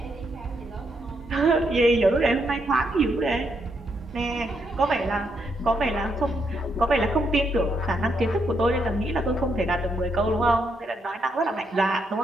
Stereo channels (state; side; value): normal; both; correlation 0.78